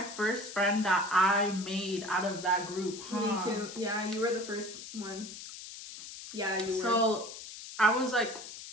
first friend that I made out of that group, huh? Me too. Yeah, you were the first one. Yeah, you were. So I was like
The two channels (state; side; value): noise; left; hiss, 12 dB below the sound